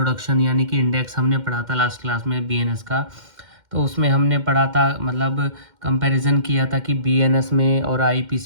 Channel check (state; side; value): late; left; 2.1 ms